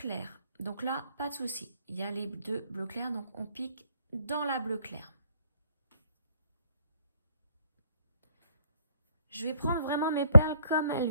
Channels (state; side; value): inverted; both; correlation -0.68